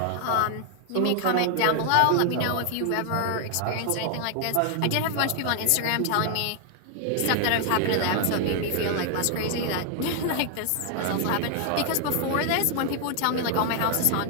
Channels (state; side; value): different; both; correlation 0.00